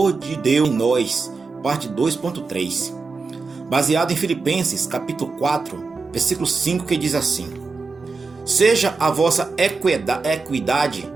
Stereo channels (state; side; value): quieter; left; 4.2 dB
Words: de Deus em Nós, parte 2.3. Baseado em Filipenses, capítulo 4, versículo 5, que diz assim: Seja a vossa equidade